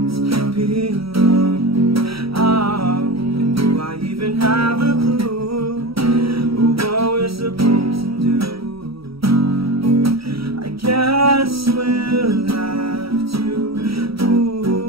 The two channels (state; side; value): late; left; 0.75 ms